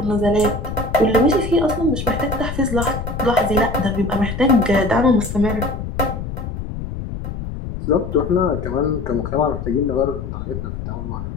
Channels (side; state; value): left; noise; rumble, 6 dB below the sound